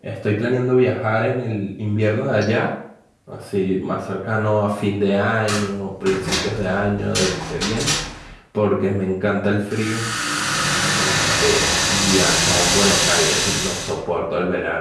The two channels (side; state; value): both; identical; correlation 1.00